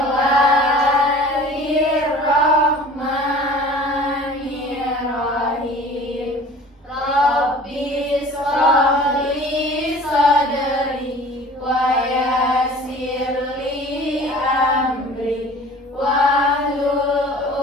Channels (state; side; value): normal; both; correlation 0.45